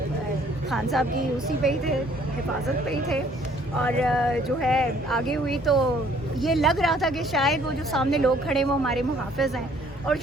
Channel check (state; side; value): normal; both; correlation 0.60